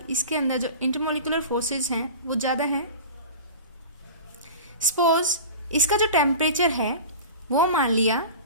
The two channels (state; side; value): inverted; both; correlation -0.35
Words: इसके अंदर जो इंटरमोलिकुलर फोर्सेस हैं वो ज़्यादा हैं। सपोज इसका जो टेम्परेचर है वो मान लिया